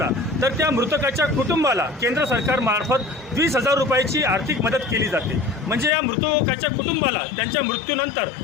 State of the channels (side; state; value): right; drops out; at 5.9 s